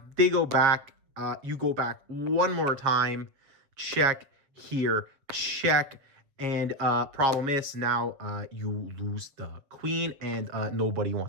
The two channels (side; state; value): left; late; 7.6 ms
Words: They go back. You go back one more time. Check here. Check. And problem is now you lose the queen, and nobody